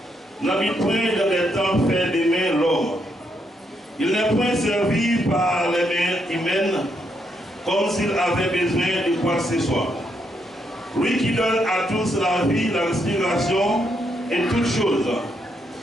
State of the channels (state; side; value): normal; both; correlation 0.77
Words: n'habite point dans les temps faits des mains l'homme. Il n'est point servi par les mains humaines comme s'il avait besoin de quoi que ce soit. Lui qui donne à tous la vie, la respiration et toutes choses.